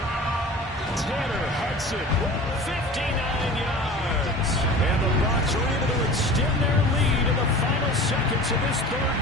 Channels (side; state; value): both; normal; correlation 0.39